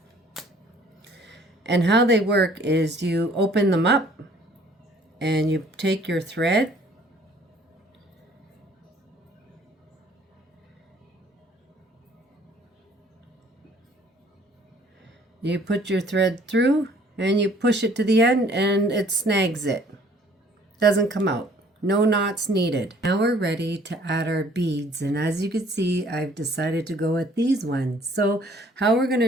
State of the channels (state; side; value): normal; both; correlation 0.57